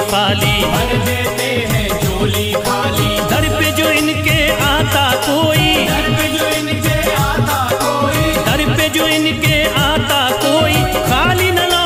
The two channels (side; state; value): both; identical; correlation 1.00